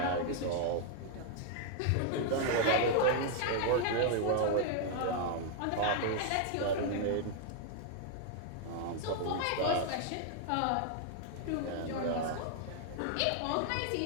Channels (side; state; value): both; different; correlation 0.00